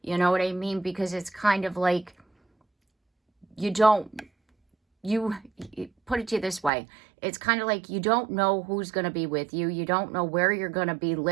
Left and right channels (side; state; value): left; drops out; at 6.7 s